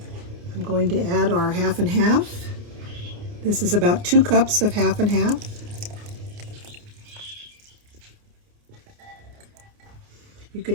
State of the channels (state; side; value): late; left; 29 ms